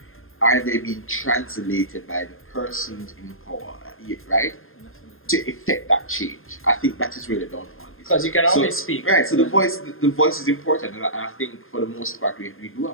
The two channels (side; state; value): right; late; 0.60 ms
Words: are they being translated by the persons in power, right? To effect that change. I think that is where the downfall is. Because you can always speak. Right, so the voice is important, and I think for the most part we do